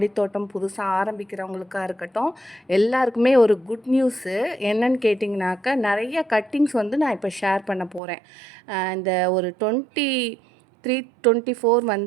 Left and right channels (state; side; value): drops out; left; at 8.0 s